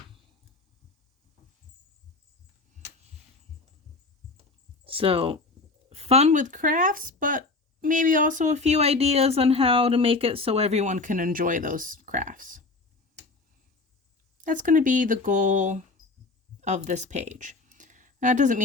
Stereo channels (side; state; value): right; quieter; 3.6 dB